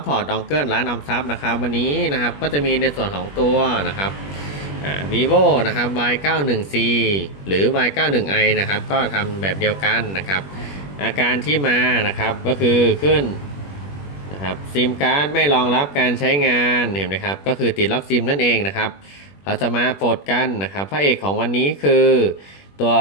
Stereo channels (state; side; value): late; right; 21 ms